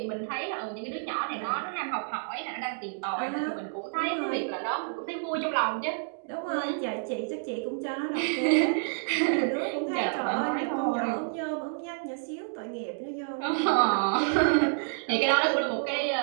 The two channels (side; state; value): left; silent; digital silence